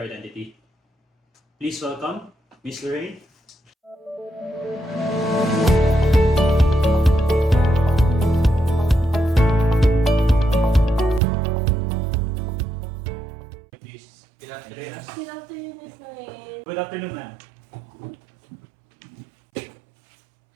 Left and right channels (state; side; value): drops out; left; at 11.2 s